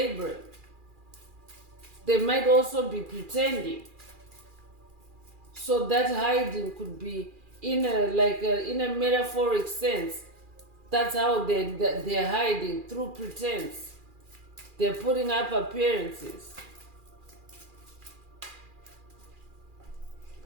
They might also be pretending. So that hiding could be in a metaphoric sense. That's how they're hiding, through pretense. They're putting up appearances.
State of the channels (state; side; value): late; left; 2.4 ms